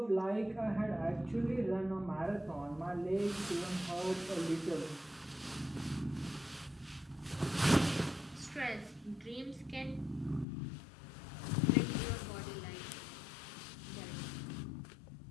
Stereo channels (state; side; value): drops out; right; at 10.5 s